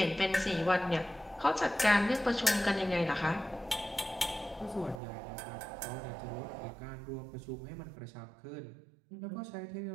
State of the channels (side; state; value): left; drops out; at 5.0 s